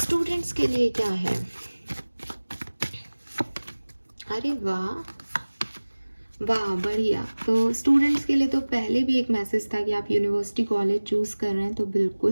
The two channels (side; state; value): both; inverted; correlation -1.00